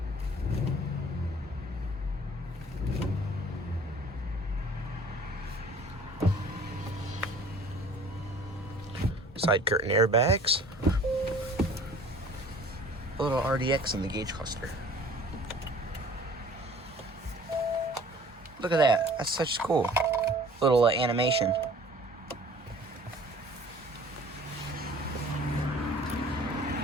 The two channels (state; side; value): normal; both; correlation 0.50